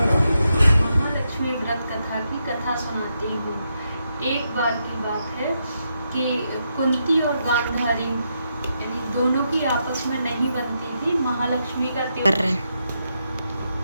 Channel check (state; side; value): inverted; both; correlation -0.82